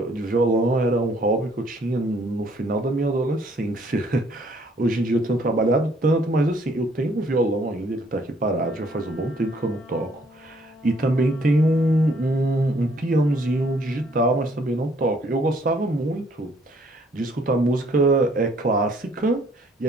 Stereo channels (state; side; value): normal; both; correlation 0.64